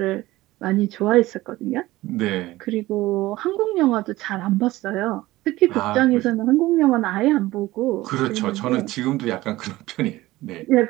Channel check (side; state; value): left; quieter; 17.8 dB